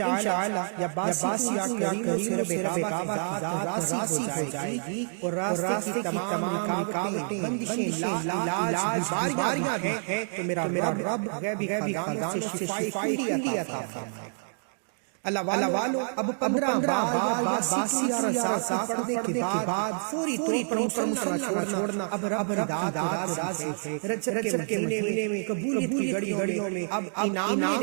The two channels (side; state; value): left; silent; digital silence